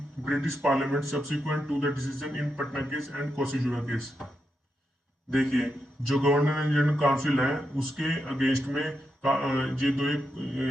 British Parliament subsequent to the decision in Patna case and Koshijura case. देखिए, जो गवर्नर जनरल काउंसिल है उसके अगेंस्ट में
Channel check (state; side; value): normal; both; correlation 0.85